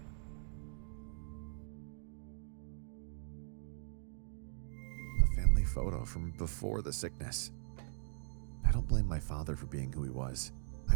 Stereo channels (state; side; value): silent; left; digital silence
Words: photo from before the sickness. I don't blame my father for being who he was. I